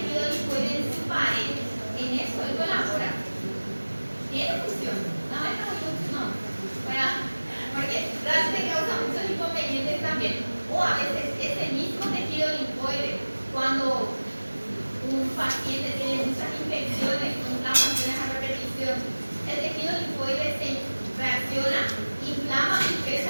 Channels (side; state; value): both; inverted; correlation -1.00